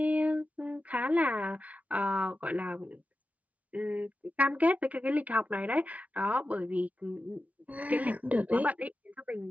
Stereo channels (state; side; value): late; left; 0.069 ms